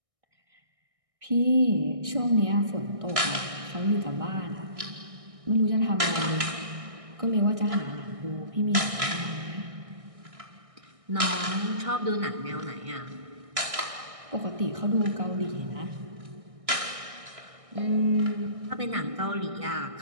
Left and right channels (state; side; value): late; left; 1.6 ms